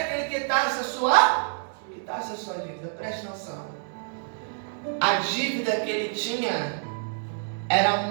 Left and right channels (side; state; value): left; silent; digital silence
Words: que ele quitasse a sua dívida. Preste atenção. A dívida que ele tinha era